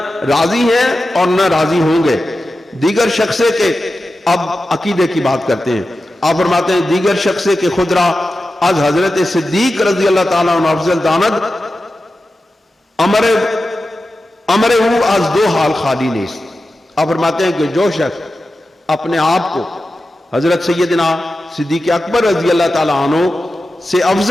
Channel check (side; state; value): both; normal; correlation 0.92